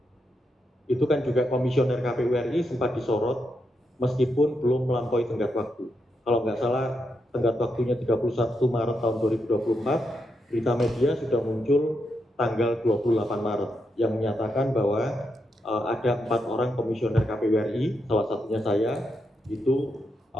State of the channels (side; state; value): both; normal; correlation 0.83